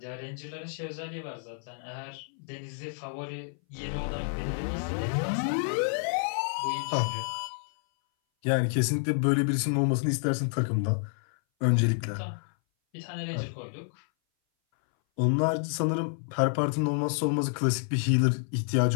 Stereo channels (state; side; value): silent; right; 58 dB below the other